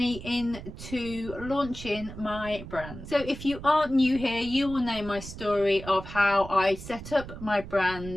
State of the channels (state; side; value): noise; right; rumble, 12 dB below the sound